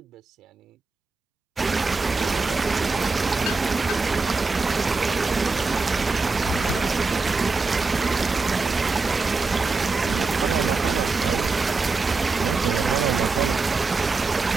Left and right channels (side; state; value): left; quieter; 4.0 dB